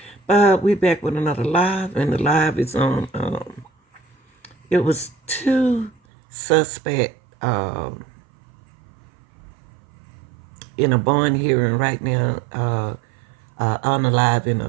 We back with another live, and the live is on. It was two suspect in a bond hearing right now. On the live in a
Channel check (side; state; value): left; drops out; at 5.9 s